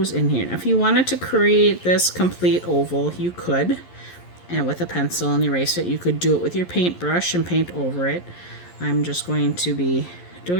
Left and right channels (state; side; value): late; right; 11 ms